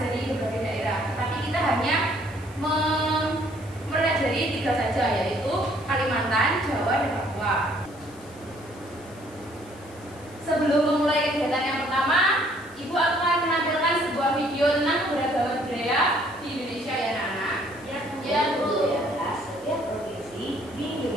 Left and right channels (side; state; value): left; noise; hiss, 24 dB below the sound